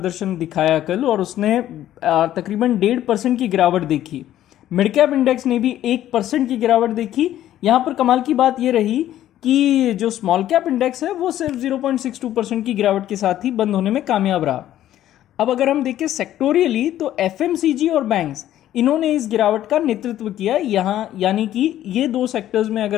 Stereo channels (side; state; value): right; quieter; 12.5 dB